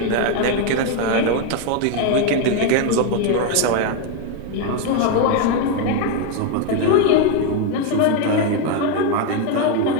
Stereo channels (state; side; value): different; both; correlation 0.01